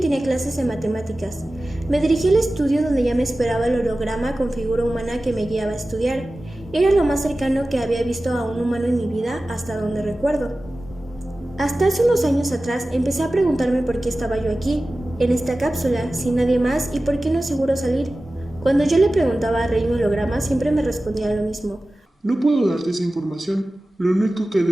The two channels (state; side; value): normal; both; correlation 0.96